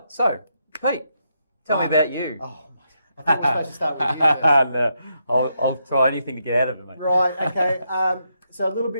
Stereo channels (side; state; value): both; inverted; correlation -0.80